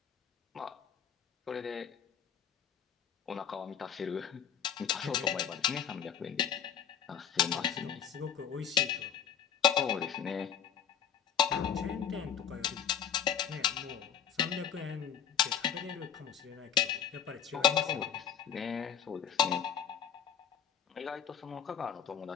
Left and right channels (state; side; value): quieter; right; 8.2 dB